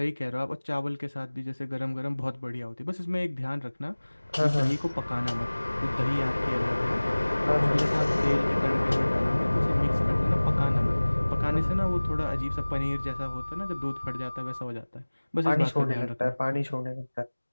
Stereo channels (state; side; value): inverted; both; correlation -1.00